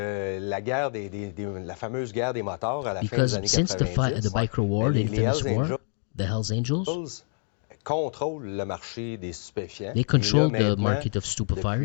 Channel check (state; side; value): silent; right; digital silence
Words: la guerre la fameuse guerre des motards à la fin des années 90, the Biker War, the infamous war, the Hells Angels contrôlent le marché des stupéfiants. They control the market of stupefires.